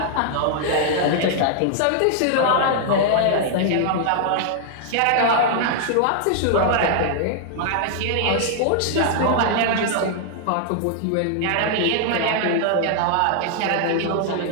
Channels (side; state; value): both; different; correlation -0.01